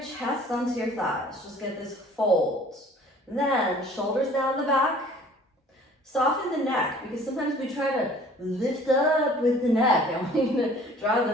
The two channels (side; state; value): both; normal; correlation 0.51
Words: chest onto your thighs. Just get this fold. Then, shoulders down the back. Soften the neck, because sometimes we try to lift up with the neck. I want you to draw